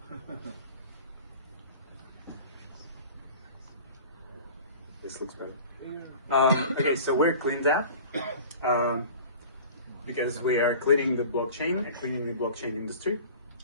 this looks better. Okay, so we're Cleanedapp because we are cleaning the blockchain and cleaning the blockchain industry.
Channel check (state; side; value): inverted; both; correlation -0.41